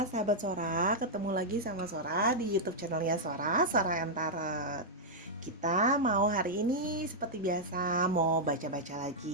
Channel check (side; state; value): both; normal; correlation -0.06